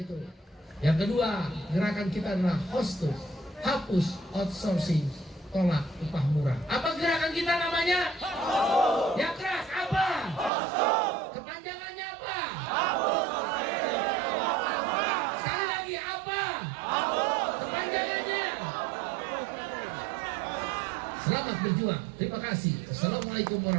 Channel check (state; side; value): drops out; left; at 10.5 s